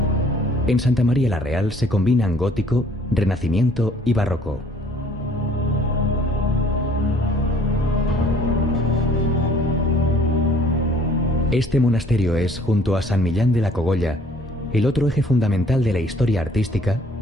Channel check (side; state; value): both; normal; correlation 0.57